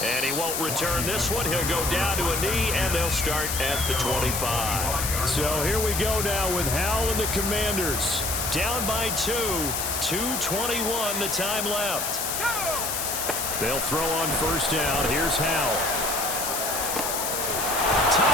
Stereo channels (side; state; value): left; noise; hiss, 2 dB below the sound